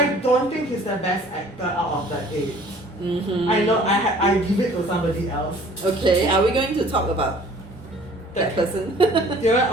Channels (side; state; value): both; normal; correlation 0.52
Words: don't think he's the best actor out of the 8. Mm-hmm. I know I give it to somebody else. Okay, are we going to talk about that person?